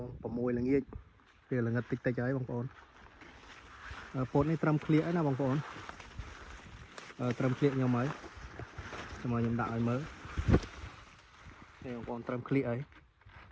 6ល្ងាចពេលល្ងិតតិចហើយបងប្អូនពោតនេះត្រឹមក្លៀកណាបងប្អូនត្រឹមក្លៀកខ្ញុំហើយខ្ញុំដាក់ឲ្យមើលនេះបងប្អូនត្រឹមក្លៀកហើយ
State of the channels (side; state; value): both; identical; correlation 1.00